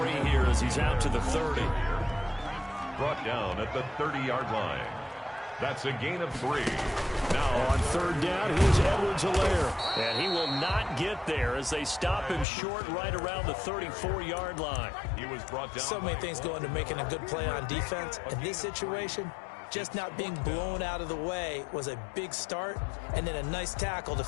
here as he's out to the 30. Brought down at the 30-yard line. That's a gain of 3. Now on 3rd down, here's Edwards-Helaire. And he will not get there as they stop him short right around the 34-yard line. He was brought down. So many things go into making a good play on defense. In this situation, just not being blown out of the way was a big start, and then a nice tackle to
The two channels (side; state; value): right; drops out; at 12.5 s